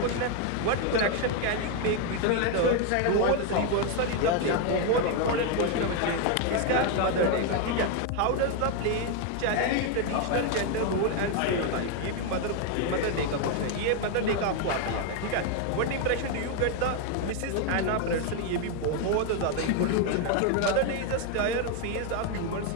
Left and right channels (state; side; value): different; both; correlation 0.01